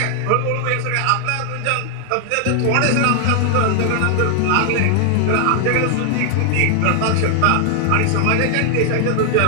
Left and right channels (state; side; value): different; both; correlation 0.00